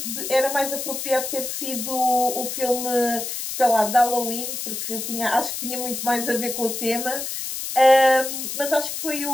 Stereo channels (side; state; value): left; noise; hiss, 5 dB below the sound